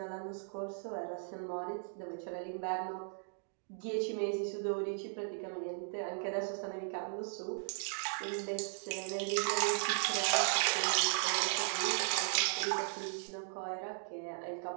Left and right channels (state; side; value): silent; left; digital silence